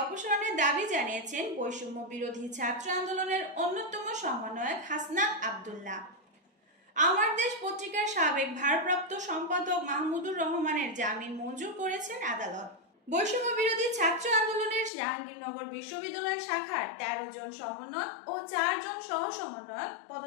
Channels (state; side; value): drops out; right; at 14.9 s